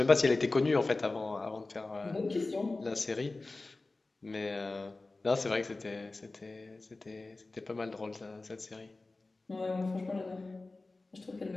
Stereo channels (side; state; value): right; quieter; 3.3 dB